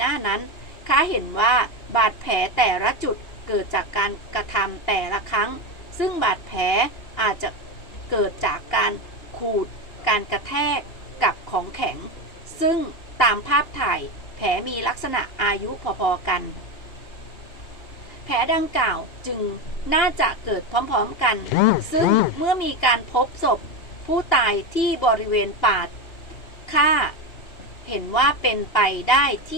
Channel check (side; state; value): right; late; 2.9 ms